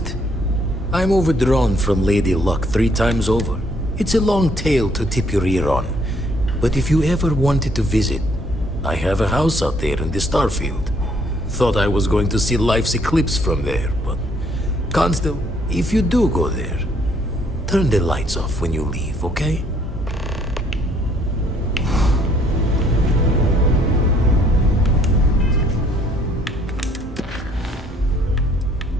I'm overdrawn from Lady Luck 3 times over. It's a long tale to tip your ear on. But if you ever wanted to visit, I have a house out there in the Starfield. Thought I was going to see life's eclipse from there, but... Constant, if you do go there, turn the lights off when you leave, okay?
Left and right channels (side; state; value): both; normal; correlation 0.66